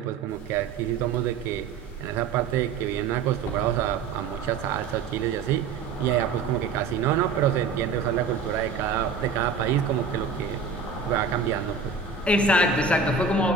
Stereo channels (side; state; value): left; quieter; 5.2 dB